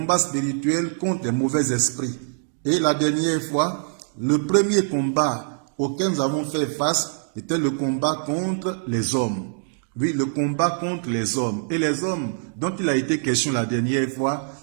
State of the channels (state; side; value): silent; left; digital silence